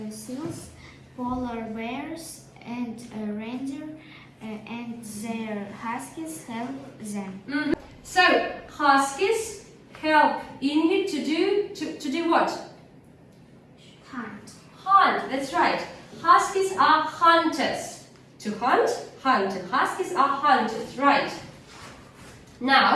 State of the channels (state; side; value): identical; both; correlation 1.00